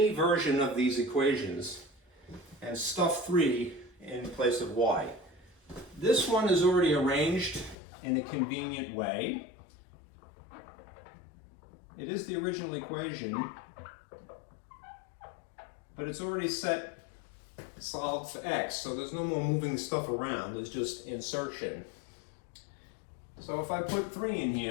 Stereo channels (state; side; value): drops out; right; at 7.8 s